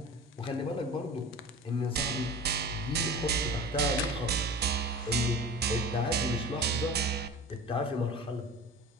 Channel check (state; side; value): normal; both; correlation 0.35